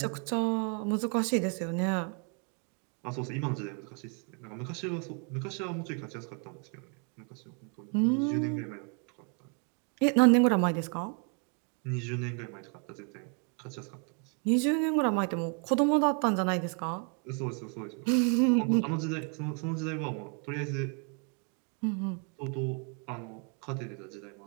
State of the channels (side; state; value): left; quieter; 38.7 dB